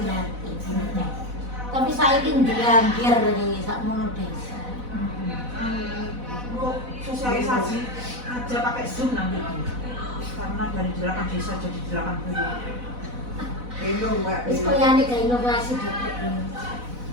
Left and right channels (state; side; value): late; left; 4.0 ms